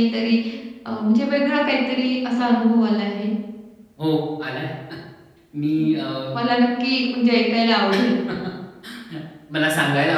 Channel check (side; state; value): both; identical; correlation 1.00